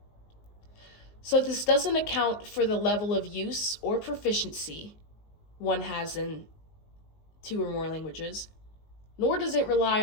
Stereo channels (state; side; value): late; right; 19 ms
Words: So this doesn't account for the level of use or proficiency one has in two or more languages, nor does it rely